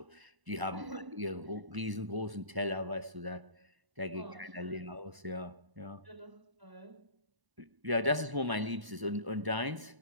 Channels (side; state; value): left; late; 1.0 ms